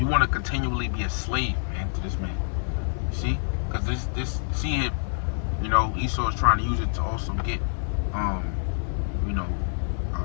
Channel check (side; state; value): right; silent; digital silence